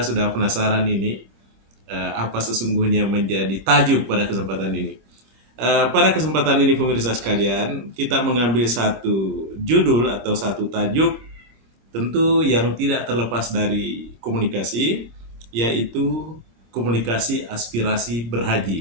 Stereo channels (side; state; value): left; late; 26 ms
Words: penasaran ini apa sesungguhnya menjadi tajuk pada kesempatan ini. Pada kesempatan ini pemirsa sekalian, kita mengambil satu judul atau satu tajuk tentu yang tidak terlepas dari komunikasi, yaitu komunikasi aspirasi